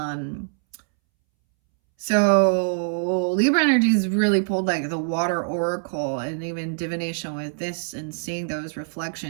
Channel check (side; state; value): left; silent; 63 dB below the other